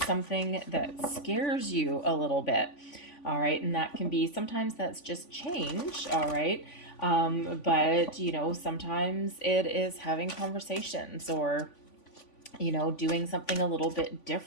that scares you a little bit. All right, and that can be, sometimes that's just change, all right? But you know, sometimes it is having conversations, or doing something a little bit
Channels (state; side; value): late; right; 3.5 ms